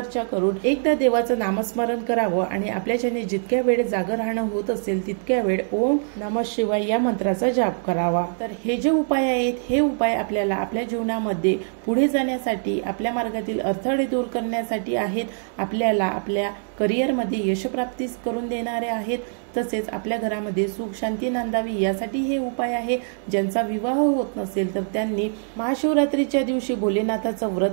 करून एकदा देवाचं नामस्मरण करावं आणि आपल्याच्याने जितक्या वेळ जागर राहणं होत असेल तितक्या वेळ ओम नमः शिवाय या मंत्राचा जाप करावा। तर हे जे उपाय आहेत हे उपाय आपल्याला आपल्या जीवनामध्ये पुढे जाण्यासाठी, आपल्या मार्गातील अडथळे दूर करण्यासाठी आहेत। आपल्याला आपल्या करिअरमध्ये यशप्राप्ती करून देणारे आहेत। तसेच आपल्या घरामध्ये सुख शांती नांदावी यासाठी हे उपाय आहे। ज्यांचा विवाह होत नसेल तर त्यांनी महाशिवरात्रीच्या दिवशी भोलेनाथाचं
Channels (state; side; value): silent; left; digital silence